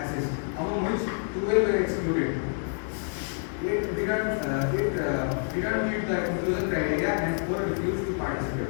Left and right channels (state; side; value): silent; right; 60 dB below the other